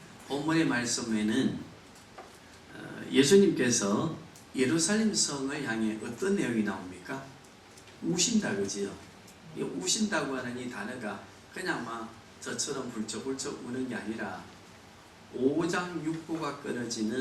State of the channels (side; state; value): both; identical; correlation 1.00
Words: 본문의 말씀에는 예수님께서 예루살렘 성을 향해 어떤 내용이 나옵니까? 우신다, 그지요? 이 우신다고 하는 이 단어가 그냥 막 저처럼 불쩍불쩍 우는 게 아니라 오장육부가